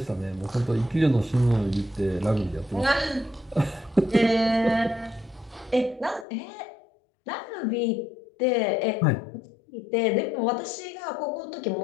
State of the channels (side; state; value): right; drops out; at 6.2 s